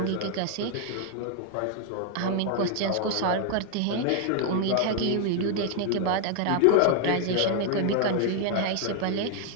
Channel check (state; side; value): different; both; correlation 0.00